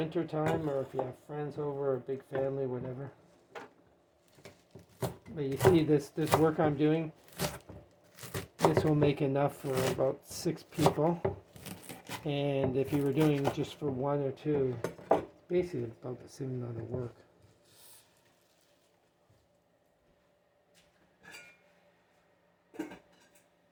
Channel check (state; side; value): identical; both; correlation 1.00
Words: time, or if you have friends over, or a big family, whatever. But you see this work I'm doing, this will make enough for about 6 people. And if you were doing just for 1 or 2, basically about the same amount of work.